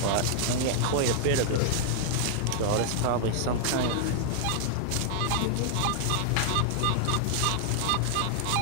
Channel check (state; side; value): different; both; correlation -0.01